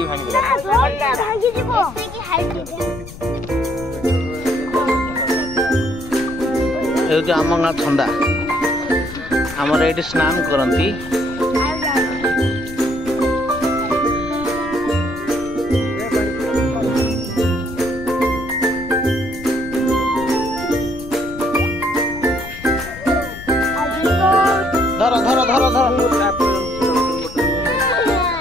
आम गाँ छंदा आमर ये स्नान करती। धर धर धर धर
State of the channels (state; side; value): noise; left; rumble, 15 dB below the sound